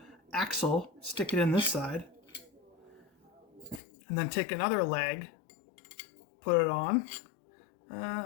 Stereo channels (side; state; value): right; drops out; at 3.8 s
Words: axle, stick it in this side. And then take another leg, put it on.